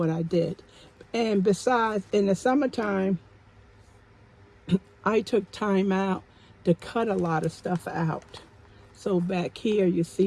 I did. And besides, in the summertime, I took time out to cut a lot of stuff out. So back here, you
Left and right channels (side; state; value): both; identical; correlation 1.00